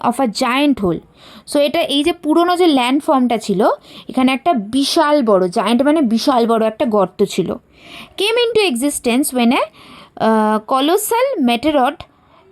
of a giant hole. So এটা এই যে পুরনো যে ল্যান্ডফর্মটা ছিল এখানে একটা বিশাল বড়, জায়েন্ট মানে বিশাল বড় একটা গর্ত ছিল। Came into existence when a colossal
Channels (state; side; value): identical; both; correlation 1.00